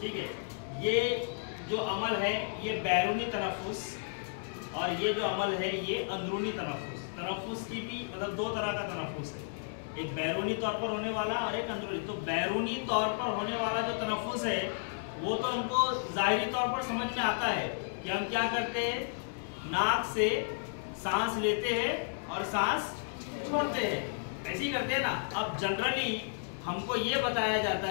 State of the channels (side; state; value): right; silent; digital silence